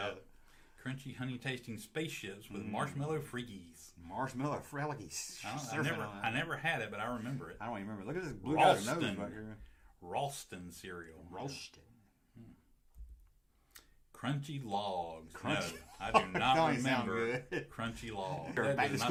Crunchy, honey-tasting spaceships with marshmallow freakies. Marshmallow freakies. I never had it, but I remember it. I don't even remember. Look at this blue guy's nose back here. Ralston cereal. Ralston. Crunchy Logs. No, I do not remember Crunchy Logs. Back to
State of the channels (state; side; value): identical; both; correlation 1.00